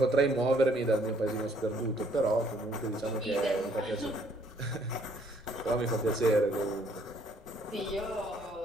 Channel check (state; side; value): normal; both; correlation 0.64